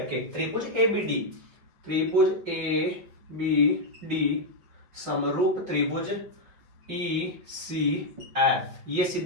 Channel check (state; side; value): late; left; 5.7 ms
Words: के। त्रिभुज ABD समरूप त्रिभुज ECF, ये